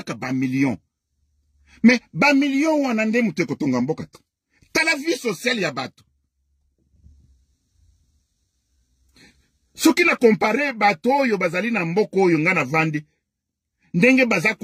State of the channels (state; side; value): identical; both; correlation 1.00